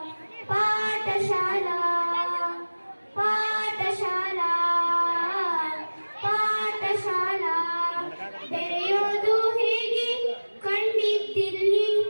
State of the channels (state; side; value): inverted; both; correlation -1.00